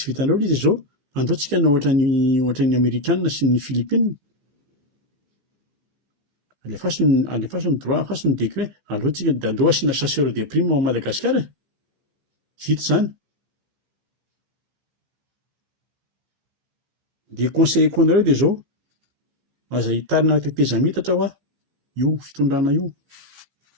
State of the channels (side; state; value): left; late; 15 ms